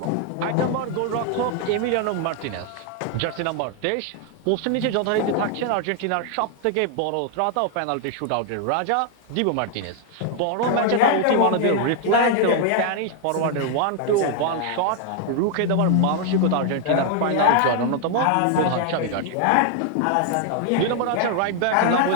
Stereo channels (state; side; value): different; both; correlation 0.00